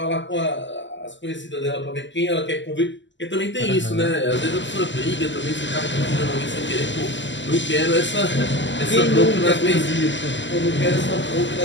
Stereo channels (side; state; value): right; late; 0.54 ms